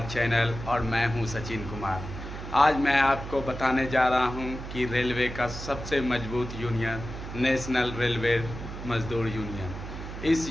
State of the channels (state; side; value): noise; right; hum, 9 dB below the sound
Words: चैनल और मैं हूं सचिन कुमार। आज मैं आपको बताने जा रहा हूं कि रेलवे का सबसे मजबूत यूनियन नेशनल रेलवे मजदूर यूनियन, इस